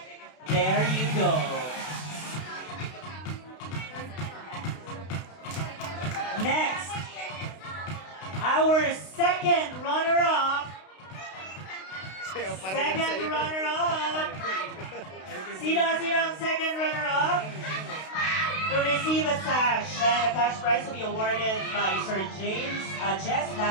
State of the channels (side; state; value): right; late; 32 ms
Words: There you go. Next, our second runner-up. Second runner-up. Sino ang second runner-up? To receive a sash and a cash prize will be awarded by Sir Jess